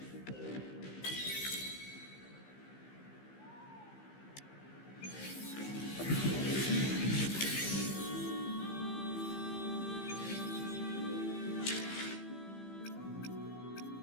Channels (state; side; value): late; right; 15 ms